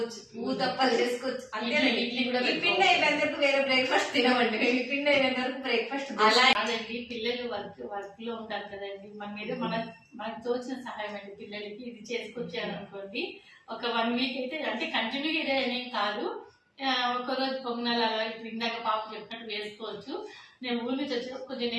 ఊతప్పలు చేసుకోవచ్చు. అంతేనండి. ఇడ్లీ కూడా. ఈ పిండి అయిపోయిన వరకు వేరే బ్రేక్ఫాస్ట్ తినమండి. ఈ పిండి అయిపోయిన వరకు బ్రేక్ఫాస్ట్. అలా కాదండి, పిల్లలు వర్క్ లో ఉంటారు కదండి. మన మీద మనకు తోచిన సహాయం అండి పిల్లలకి. ఇది చేసుకొచ్చారు అనుకోండి, ఒక 1 వీక్ అయితే, అంటే కంటిన్యూగా ఇదే అనేం కాదు. ఒక్కరోజు పొంగనాలు అలా ఇందాక పాప చెప్పినట్టు వేసుకోవచ్చు. నేను ఊరి నుంచి వచ్చి కొంచెం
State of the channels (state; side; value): identical; both; correlation 1.00